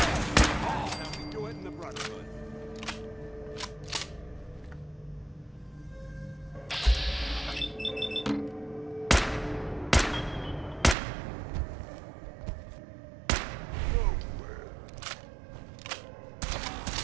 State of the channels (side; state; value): left; drops out; at 11.0 s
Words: How we do it in the Brotherhood.